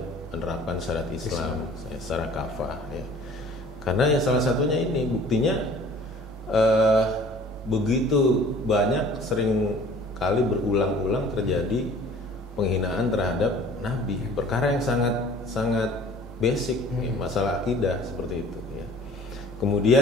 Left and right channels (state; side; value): normal; both; correlation 0.49